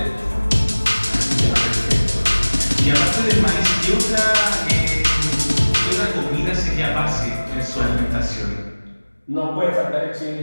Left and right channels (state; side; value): inverted; both; correlation -1.00